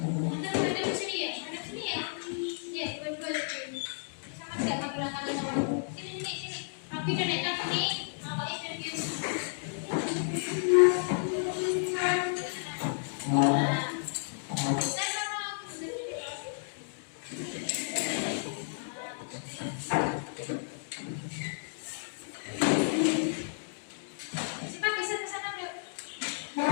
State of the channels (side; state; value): right; silent; digital silence